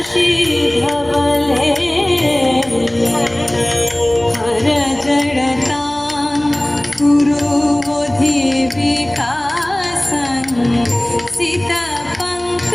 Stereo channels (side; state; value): left; noise; hum, 27 dB below the sound